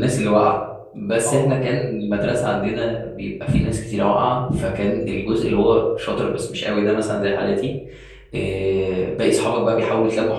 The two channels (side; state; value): both; identical; correlation 1.00